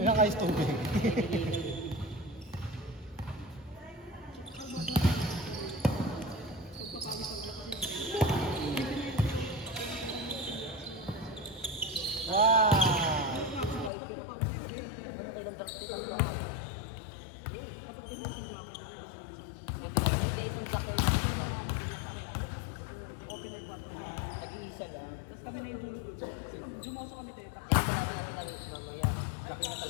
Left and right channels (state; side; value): drops out; right; at 13.9 s